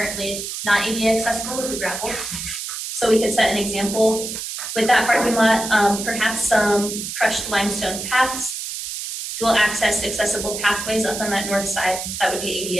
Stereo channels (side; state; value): right; noise; hiss, 6 dB below the sound